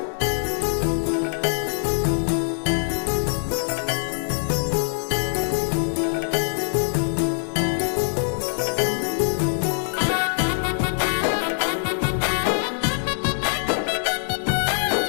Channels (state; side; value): silent; right; digital silence